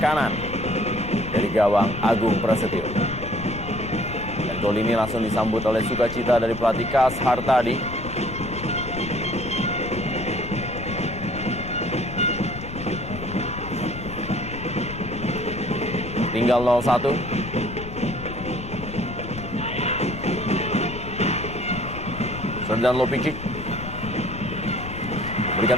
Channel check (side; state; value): left; noise; rumble, 10 dB below the sound